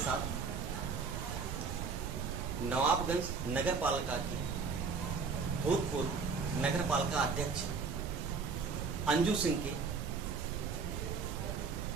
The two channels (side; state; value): left; quieter; 5.1 dB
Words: नवाबगंज नगर पालिका के भूतपूर्व नगर पालिका अध्यक्ष अंजू सिंह के